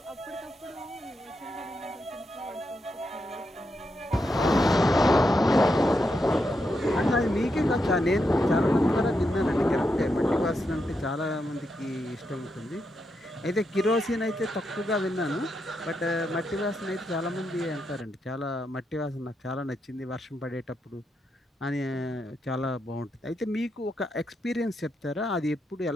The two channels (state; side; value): normal; both; correlation 0.83